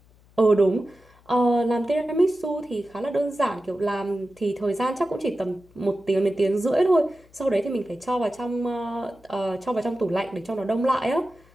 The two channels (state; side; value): noise; left; hum, 29 dB below the sound